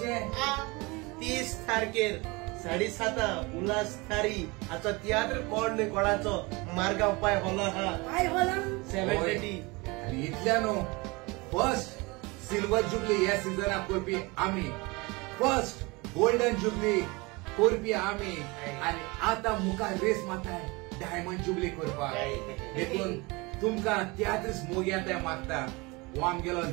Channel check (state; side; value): quieter; left; 25.3 dB